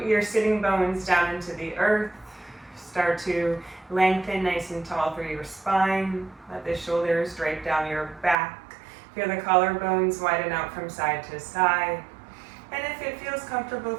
your sitting bones down into the earth. Start to lengthen nice and tall through your spine. Let the shoulders drape down your back. Feel the collarbones widen out from side to side. And if it feels comfortable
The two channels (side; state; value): left; drops out; at 8.3 s